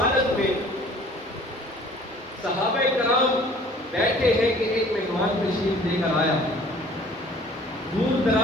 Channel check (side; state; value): both; normal; correlation 0.51